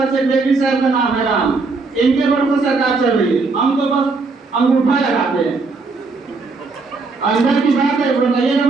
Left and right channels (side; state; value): left; quieter; 4.0 dB